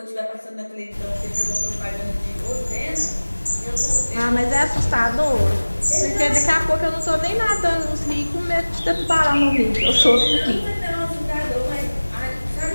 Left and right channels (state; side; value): inverted; both; correlation -1.00